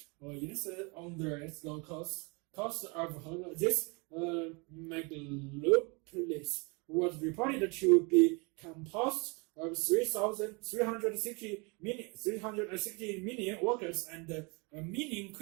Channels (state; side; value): quieter; left; 30.3 dB